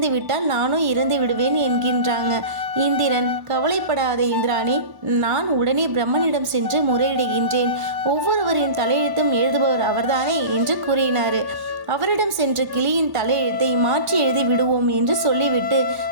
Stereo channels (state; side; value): late; left; 1.1 ms